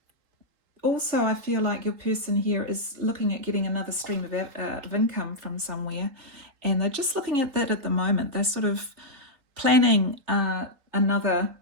I feel like your person here is looking at getting another stream of income from somewhere, and they're just looking at that at the moment. They're sort of planning another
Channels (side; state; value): left; late; 3.8 ms